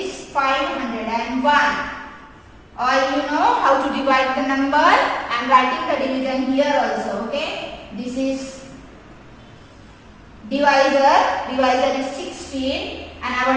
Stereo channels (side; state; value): both; identical; correlation 1.00